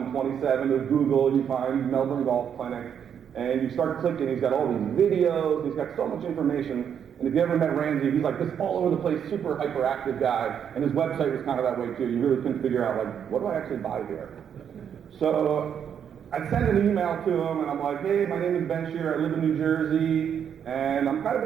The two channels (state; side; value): quieter; left; 8.3 dB